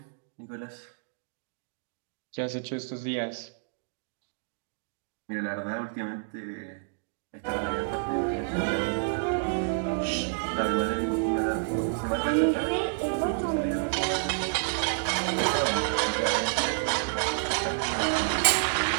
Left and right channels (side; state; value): left; silent; digital silence